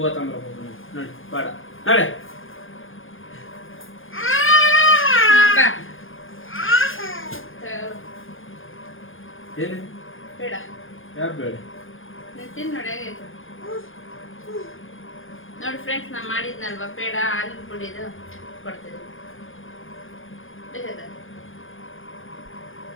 ತಗೊಂಡ್ಬರ್ಬೇಕು ನೋಡಿ ಬೇಡ ನಾಳೆ ಏನು ಬೇಡ ಯಾರು ಬೇಡ ತಿನ್ ನೋಡಿ ಹೇಗೈತೆ ನೋಡಿ ಫ್ರೆಂಡ್ಸ್ ನಾ ಮಾಡಿದ್ನಲ್ವಾ ಪೇಡ ಹಾಲಿನ ಪುಡಿದು ಕೊಡ್ತಿದ್ದೆ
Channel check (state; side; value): late; right; 0.58 ms